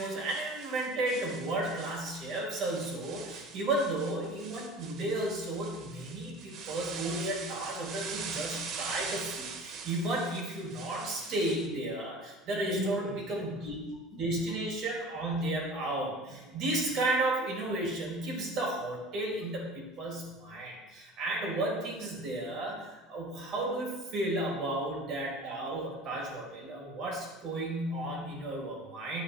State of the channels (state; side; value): normal; both; correlation 0.40